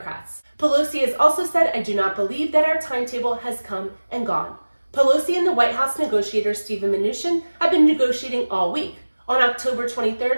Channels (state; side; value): inverted; both; correlation -1.00